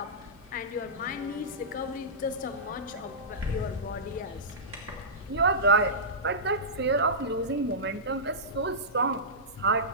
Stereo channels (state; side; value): normal; both; correlation -0.17